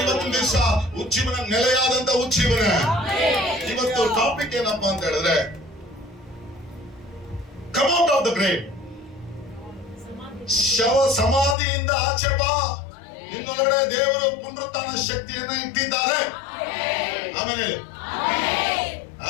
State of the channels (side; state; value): right; drops out; at 11.6 s